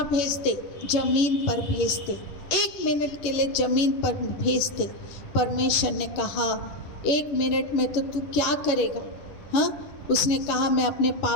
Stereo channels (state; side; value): late; right; 11 ms